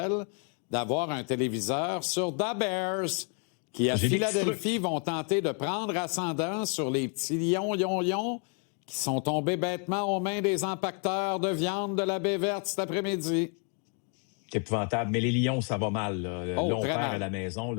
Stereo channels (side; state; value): right; quieter; 39.7 dB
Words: d'avoir un téléviseur sur The Bears, qui à Philadelphie vont tenter de prendre ascendant sur les petits lions qui sont tombés bêtement aux mains des empaqueteurs de viande de la baie verte cet après-midi. C'est épouvantable. Mais les Lions, ça va mal. Là, on perd à la maison.